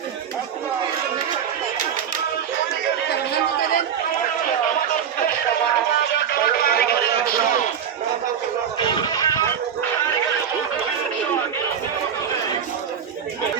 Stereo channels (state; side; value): quieter; left; 8.2 dB